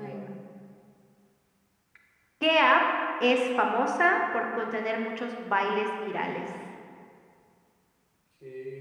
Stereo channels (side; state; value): both; identical; correlation 1.00